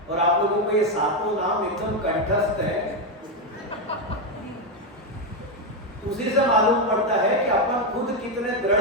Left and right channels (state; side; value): normal; both; correlation 0.07